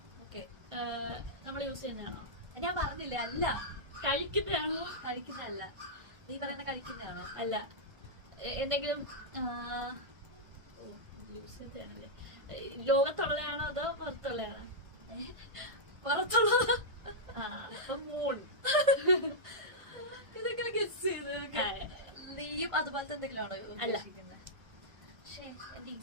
ഓക്കെ. നമ്മൾ യൂസ് ചെയ്യുന്നതാണോ? ഞാൻ പറഞ്ഞില്ലേ അല്ല. കഴിക്കുന്നതാണോ? കഴിക്കുന്നതല്ല. നീ പറയുന്ന കഴിക്കുന്നതാണോ? അല്ല. എന്തെങ്കിലും യൂസ് ചെയ്തതാണല്ലേ. ലോകത്തുള്ളതാണോ അതോ പുറത്തുള്ളതാണോ? പുറത്തുള്ളത്. അപ്പൊ മൂൺ. ഇതൊക്കെ ഗസ് ചെയ്ത്. നീയും അതുപോലത്തെ എന്തെങ്കിലും ആണോ ഉദ്ദേശിക്കുന്നത്? പക്ഷേ എന്റെ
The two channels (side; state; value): left; late; 1.5 ms